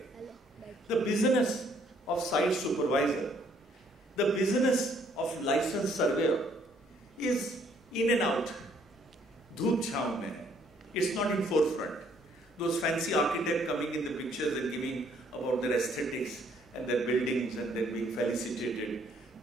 the business of site supervisor, the business of licensed surveyor is in and out. Dhoop chhav mein. It's not in forefront. Those fancy architects coming in the pictures and giving about their aesthetics and their buildings and their being felicitated,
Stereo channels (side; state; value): both; normal; correlation 0.65